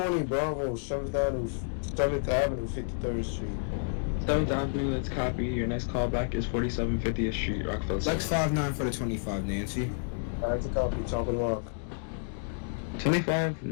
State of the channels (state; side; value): silent; right; digital silence